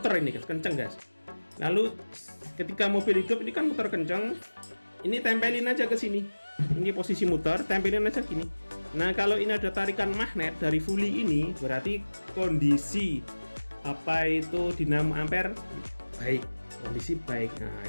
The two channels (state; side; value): inverted; both; correlation -1.00